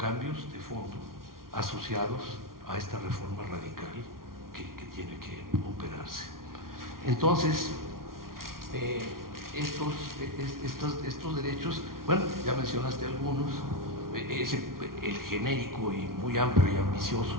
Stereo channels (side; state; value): left; late; 0.92 ms